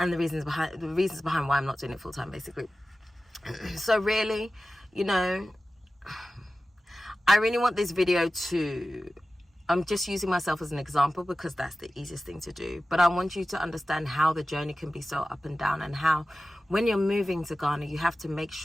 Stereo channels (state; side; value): normal; both; correlation 0.95